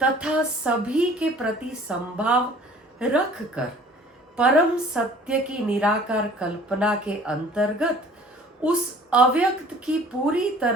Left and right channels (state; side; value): normal; both; correlation 0.50